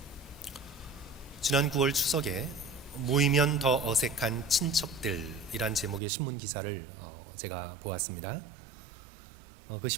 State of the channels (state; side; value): drops out; left; at 6.0 s